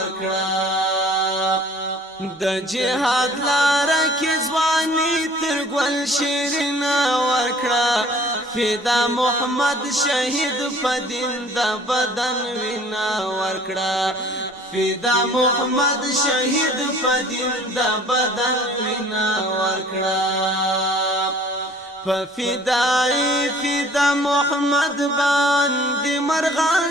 د جهاد لاره کې ځواني تر ګل شیرینه ورکړه فدا محمد شهید په دین د بدن وینا ورکړه فدا محمد شهید په دین د بدن وینا ورکړه په فدا محمد باندې مرغان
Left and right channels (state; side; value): normal; both; correlation 0.52